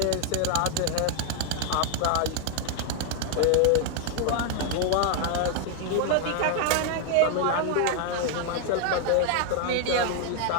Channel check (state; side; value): different; both; correlation 0.00